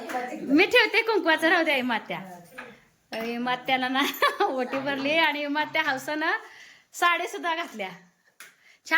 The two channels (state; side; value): identical; both; correlation 1.00